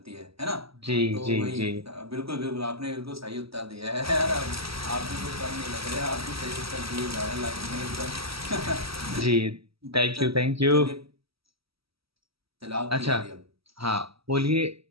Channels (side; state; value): left; late; 0.76 ms